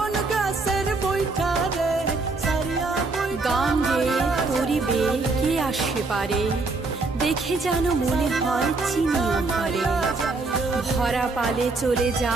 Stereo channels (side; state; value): left; quieter; 3.6 dB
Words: गाছের বৈঠা রে সারিয়া গান গে তোরি বে কে আসে পারে দেখে যেন মনে হয় চিনিও ভরে ভরা পালে চলে